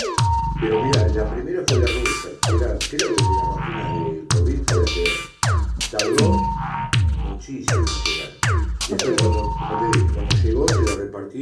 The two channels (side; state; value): both; identical; correlation 1.00